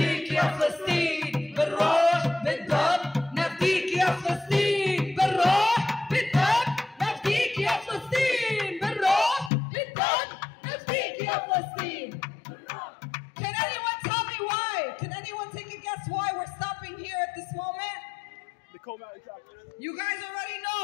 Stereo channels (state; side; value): drops out; right; at 9.5 s